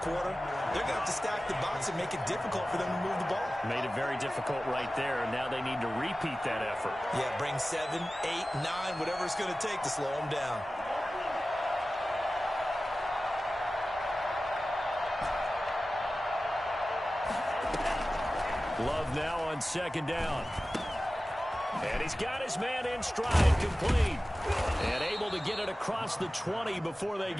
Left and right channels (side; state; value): both; normal; correlation 0.96